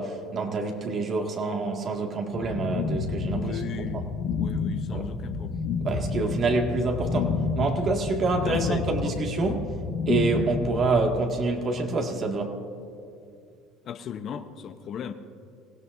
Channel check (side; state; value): both; normal; correlation 0.59